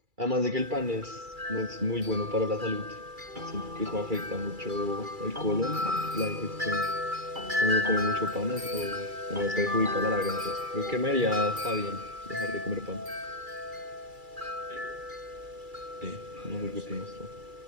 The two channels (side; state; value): left; late; 2.3 ms